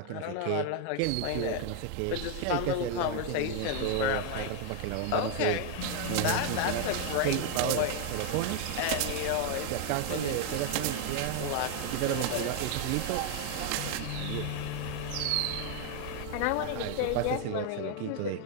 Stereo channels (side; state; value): both; different; correlation 0.01